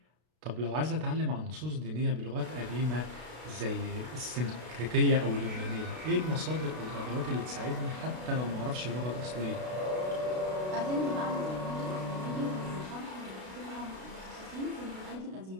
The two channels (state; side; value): late; left; 32 ms